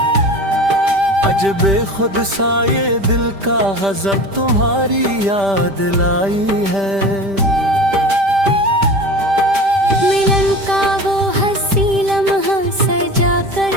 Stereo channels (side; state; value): left; late; 5.1 ms